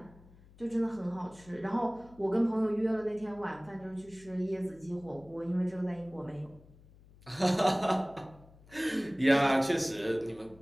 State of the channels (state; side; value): noise; left; hum, 24 dB below the sound